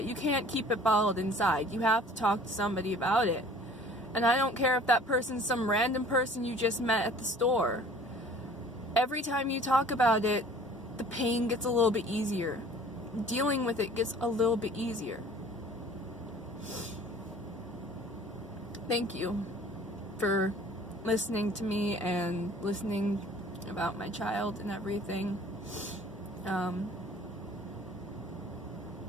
You can't keep it bottled inside. You have to talk to somebody about it. And I don't care if that person's some random person you just met at the store. Every time you talk about it, the pain gets a little bit easier. Dealing with it gets a little bit easier. Thank you for listening to me and listening about my child and everything.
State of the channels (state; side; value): normal; both; correlation 0.49